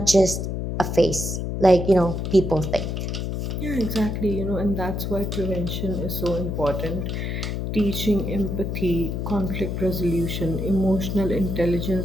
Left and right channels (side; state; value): left; noise; hum, 3 dB below the sound